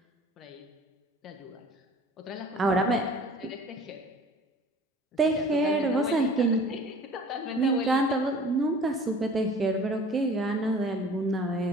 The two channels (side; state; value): both; normal; correlation 0.47